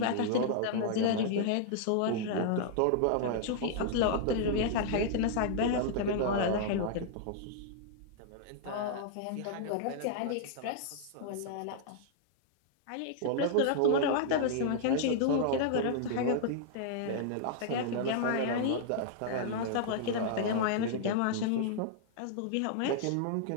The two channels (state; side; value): different; both; correlation -0.01